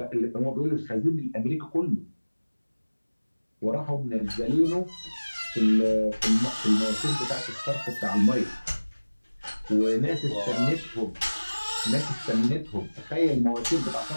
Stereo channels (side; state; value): both; inverted; correlation -1.00